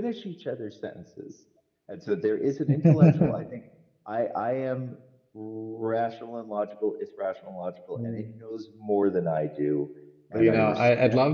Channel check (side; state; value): both; identical; correlation 1.00